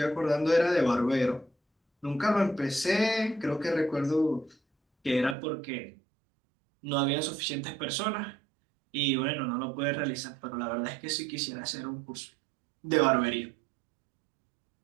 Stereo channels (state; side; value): drops out; left; at 5.4 s